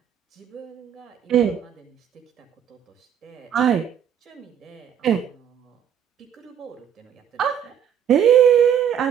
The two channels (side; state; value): left; quieter; 8.9 dB